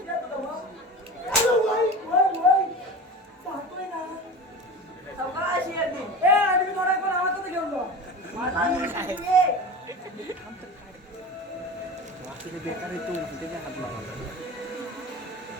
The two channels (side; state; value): both; normal; correlation 0.32